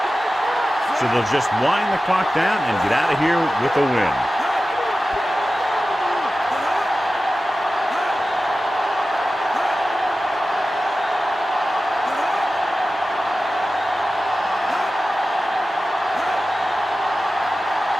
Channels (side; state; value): both; normal; correlation 0.95